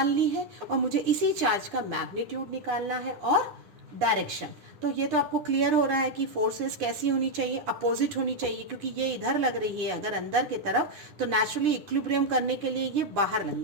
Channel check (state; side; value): late; left; 9.5 ms